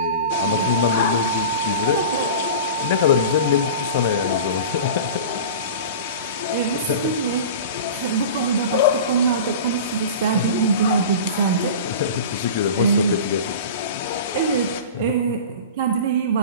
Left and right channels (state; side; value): inverted; both; correlation -0.34